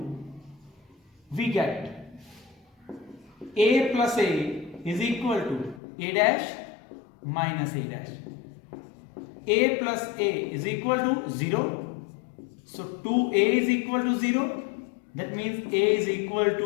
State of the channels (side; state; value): right; drops out; at 5.8 s